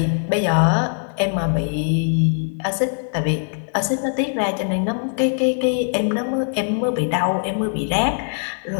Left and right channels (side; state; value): right; silent; digital silence